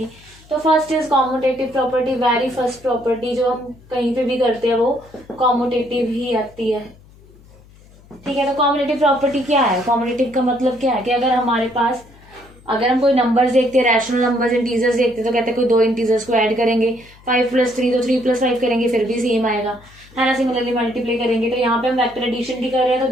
तो first is commutative property, very first property जो हम कहीं पे भी करते हैं वो कॉम्यूटेटिव ही आती है। ठीक है, तो कॉम्यूटेटिव प्रॉपर्टी क्या है, कॉम्यूटेटिव का मतलब क्या है कि अगर हमारे पास, अगर हम कोई नंबर्स देखते हैं, रैशनल नंबर्स, इंटीजर्स देखते हैं, तो कहते हैं कोई दो इंटीजर्स को ऐड करेंगे, 5 + 3 तो 3 + 5 करेंगे फिर भी सेम आएगा, है ना। सिमिलरली मल्टीप्लाई करेंगे, तो यहाँ पे हम वेक्टर एडिशन की कर रहे हैं, तो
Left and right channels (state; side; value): noise; left; hum, 25 dB below the sound